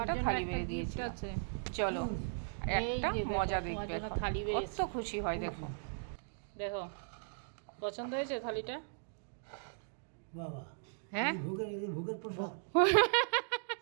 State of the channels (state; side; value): silent; left; digital silence